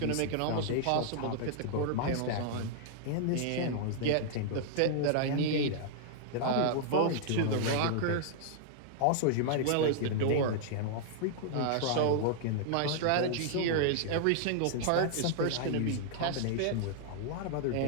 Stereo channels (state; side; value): different; both; correlation -0.01